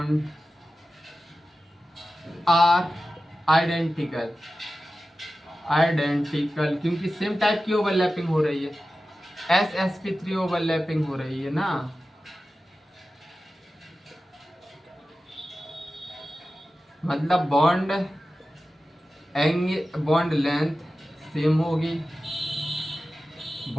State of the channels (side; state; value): both; normal; correlation 0.94